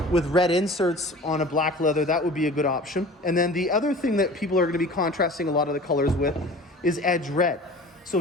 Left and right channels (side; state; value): both; normal; correlation 0.41